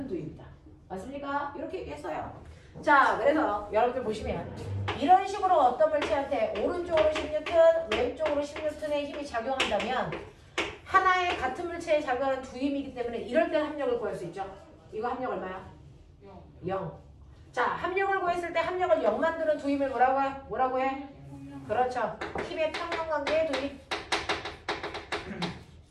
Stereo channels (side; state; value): both; identical; correlation 1.00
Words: 두입니다. 맞습니까? 이렇게 얘기했어요. 자, 그래서 여러분들 보시면 이런 식으로 어떤 물체한테 오른쪽으로 10N, 왼쪽으로 10N의 힘이 작용한다면 하나의 같은 물체에 작용하는 두 힘이기 때문에 이럴 때 합력을 구할 수 있죠. 이거 합력 얼마야? 0. 자, 합력을 구했을 때 합력을 0 만드는 두 힘을 뭐라고 해? 뭐라고 해? 그렇죠. 힘의 평형관계의 두 힘.